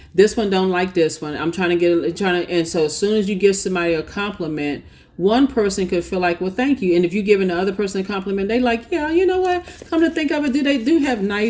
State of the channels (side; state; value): both; identical; correlation 1.00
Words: this one don't like this one. And so as soon as you give somebody a compliment, one person could feel like, well, thank you. And if you're giving the other person a compliment, they like, yeah, you know what? Come to think of it, they do have